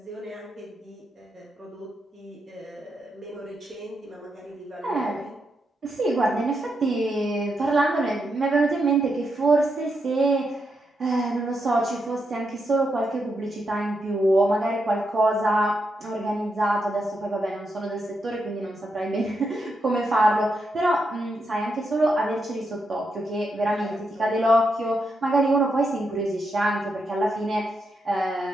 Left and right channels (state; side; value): normal; both; correlation 0.83